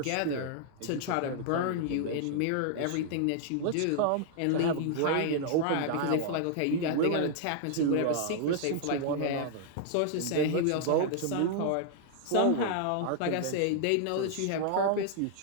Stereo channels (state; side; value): different; both; correlation -0.01